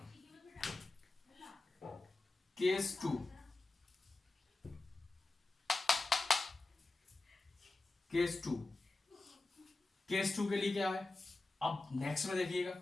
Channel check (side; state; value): right; quieter; 3.1 dB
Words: Case 2, case 2, case 2 के लिए क्या है, अब नेक्स्ट में देखिएगा,